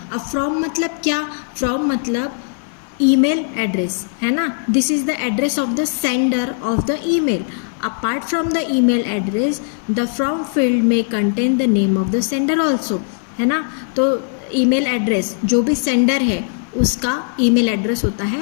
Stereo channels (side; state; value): right; silent; 57 dB below the other